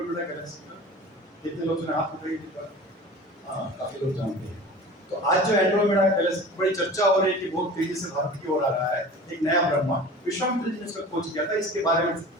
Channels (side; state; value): both; normal; correlation 0.39